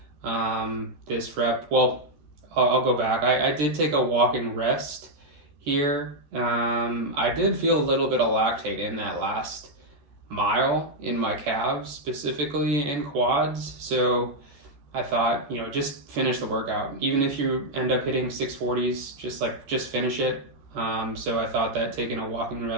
This rep, well, I'll go back. I did take a walking rest here. I did feel a little bit of lactate in that last mile in my calves, specifically in quads. So I thought, just finish the workout. Even if you end up hitting 640s, just finish it. So I thought that taking a walking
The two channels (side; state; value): left; late; 14 ms